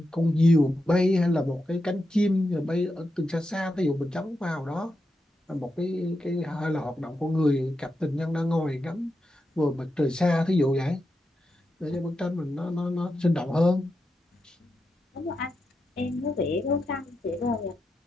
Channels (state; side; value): normal; both; correlation 0.87